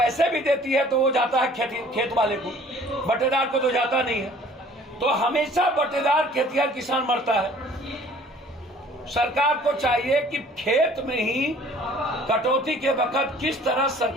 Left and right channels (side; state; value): both; normal; correlation 0.53